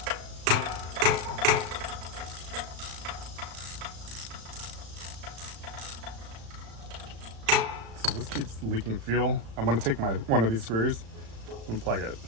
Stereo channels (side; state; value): left; late; 35 ms